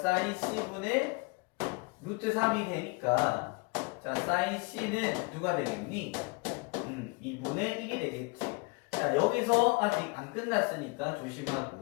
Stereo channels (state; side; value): quieter; right; 29.2 dB